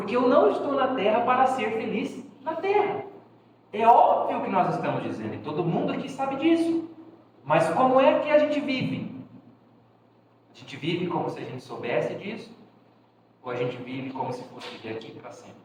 eu não estou na Terra para ser feliz na Terra. É óbvio que nós estamos dizendo, e todo mundo aqui sabe disso. Mas como é que a gente vive? A gente vive como se a gente soubesse disso? Ou a gente vive como se fosse viver aqui para sempre?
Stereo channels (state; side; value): identical; both; correlation 1.00